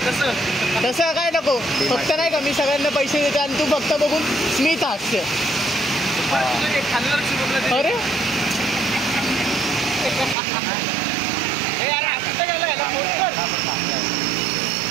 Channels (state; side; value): drops out; left; at 10.4 s